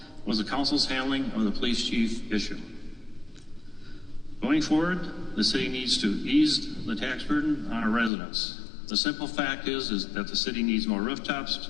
was the council's handling of the police chief issue. Going forward, the city needs to ease the tax burden on our residents. The simple fact is that the city needs more rooftops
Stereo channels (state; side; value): drops out; right; at 8.1 s